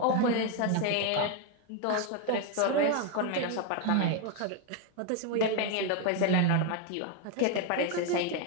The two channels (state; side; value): different; both; correlation 0.01